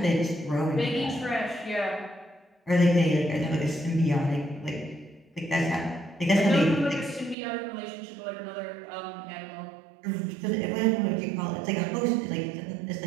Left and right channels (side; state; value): left; drops out; at 7.4 s